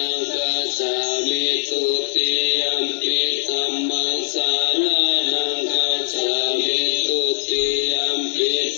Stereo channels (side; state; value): right; silent; digital silence